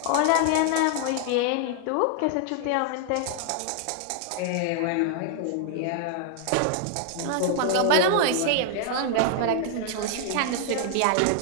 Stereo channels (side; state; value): both; different; correlation 0.00